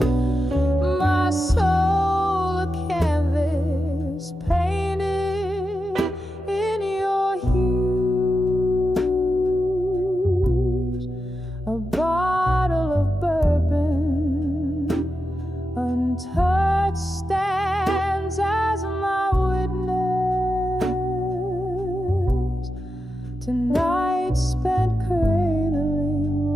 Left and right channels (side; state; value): both; normal; correlation 0.89